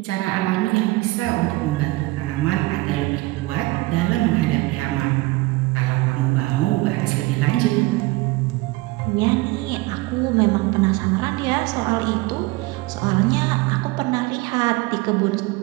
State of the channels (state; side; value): quieter; left; 21.0 dB